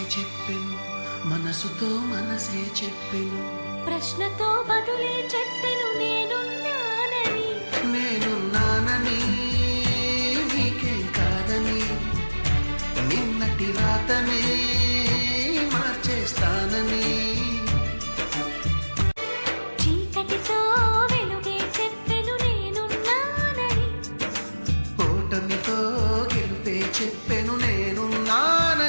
చెప్పెను, మనసుతో మనసే చెప్పెను, ప్రశ్నతో బదులే చెప్పెను.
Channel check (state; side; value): inverted; both; correlation -1.00